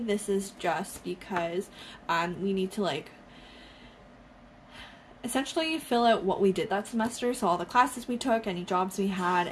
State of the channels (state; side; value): identical; both; correlation 1.00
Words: is just because we need to like essentially fill out what we did that semester. So all the classes we took, any jobs we had,